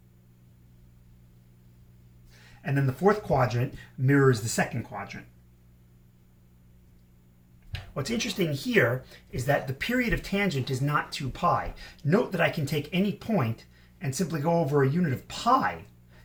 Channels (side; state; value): both; identical; correlation 1.00